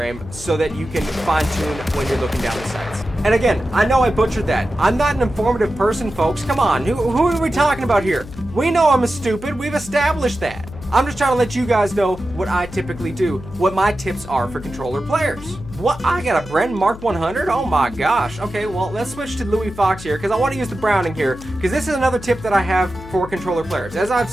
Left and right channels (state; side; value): noise; left; hum, 15 dB below the sound